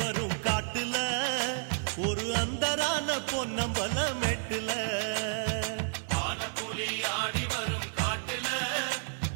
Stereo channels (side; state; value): left; silent; 57 dB below the other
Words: காட்டுல ஒரு அந்தரான பொன்னம்பல மெட்டுல புலி ஆடி வரும் காட்டுல